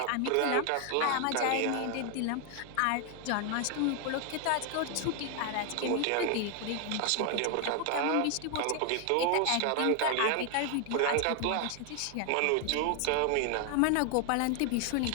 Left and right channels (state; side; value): different; both; correlation 0.00